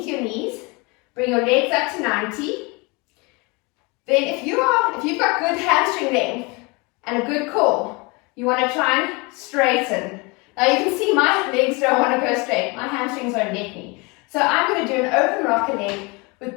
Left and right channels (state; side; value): quieter; right; 27.8 dB